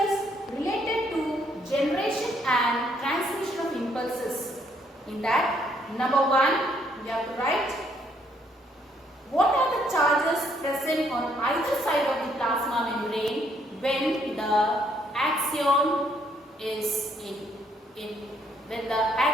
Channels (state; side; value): normal; both; correlation 0.69